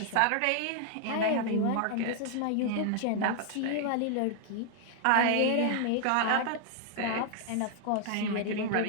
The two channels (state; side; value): different; both; correlation 0.00